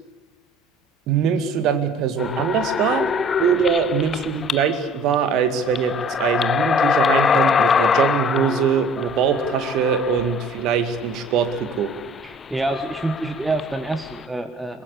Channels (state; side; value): normal; both; correlation 0.50